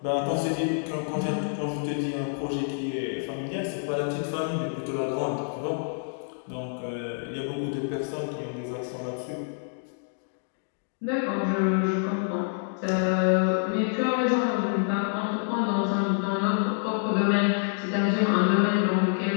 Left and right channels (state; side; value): silent; right; digital silence